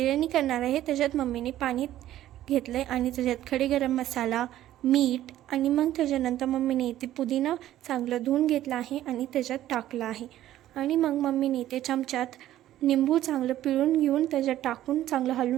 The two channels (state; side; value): quieter; left; 13.3 dB